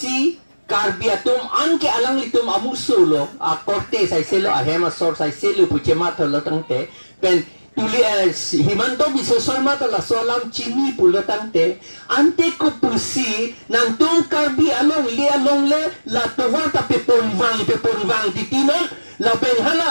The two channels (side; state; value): both; inverted; correlation -1.00